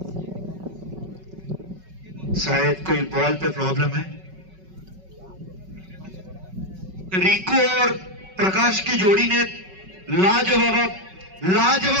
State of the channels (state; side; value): late; left; 5.3 ms